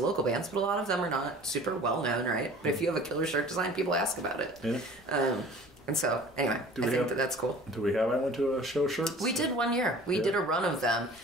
bands, but a lot of them are not super well known, right? But if you have a killer shirt design, people ask about it. Yeah. And so, anyway, I think that's cool. Do we have anyone to a show shirts? We did one year. We did a run of them.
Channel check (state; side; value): noise; left; rumble, 30 dB below the sound